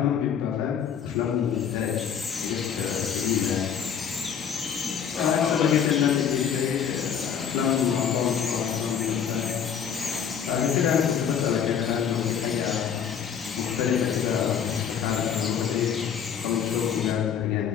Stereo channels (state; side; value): quieter; right; 7.9 dB